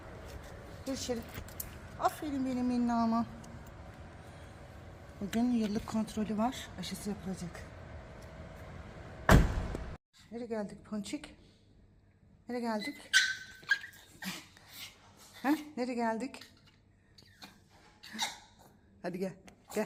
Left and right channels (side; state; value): both; identical; correlation 1.00